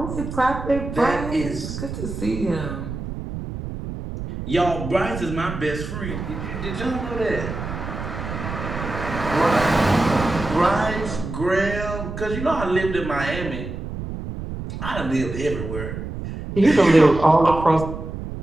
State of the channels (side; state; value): right; noise; rumble, 7 dB below the sound